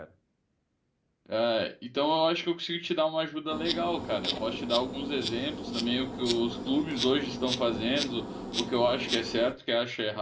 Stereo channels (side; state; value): both; identical; correlation 1.00